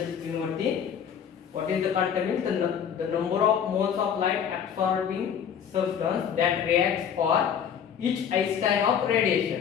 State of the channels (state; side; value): quieter; right; 8.0 dB